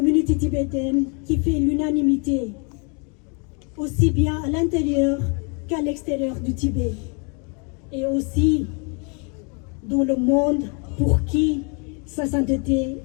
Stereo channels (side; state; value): right; quieter; 35.9 dB